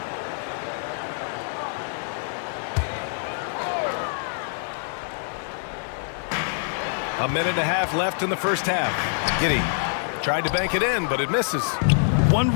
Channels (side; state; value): right; silent; 57 dB below the other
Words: A minute and a half left in the first half. Giddey tried to bank it in, but it misses. One